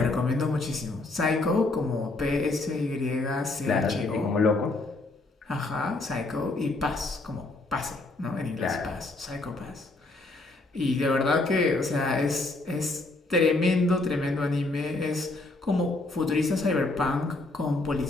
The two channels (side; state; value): right; quieter; 3.1 dB